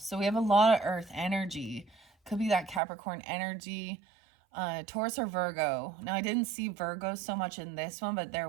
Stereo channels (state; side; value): drops out; left; at 2.8 s